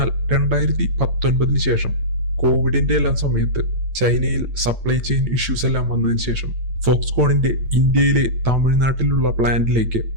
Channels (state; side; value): late; left; 8.8 ms